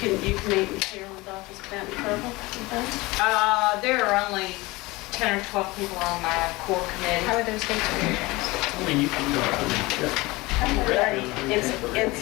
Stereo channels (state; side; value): quieter; right; 21.9 dB